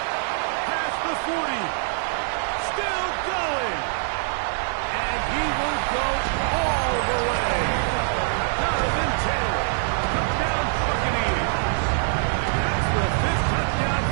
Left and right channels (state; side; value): silent; left; digital silence